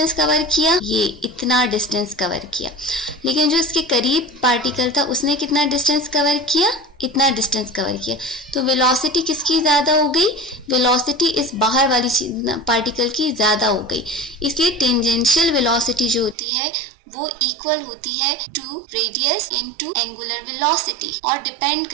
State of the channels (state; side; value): drops out; left; at 16.4 s